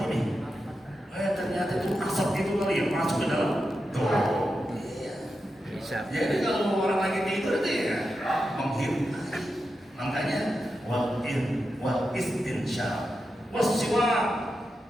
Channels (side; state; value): both; normal; correlation 0.89